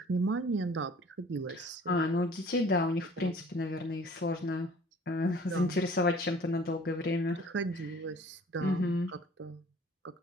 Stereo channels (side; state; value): both; normal; correlation 0.51